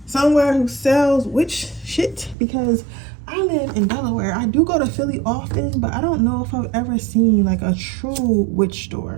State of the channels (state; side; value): drops out; left; at 2.4 s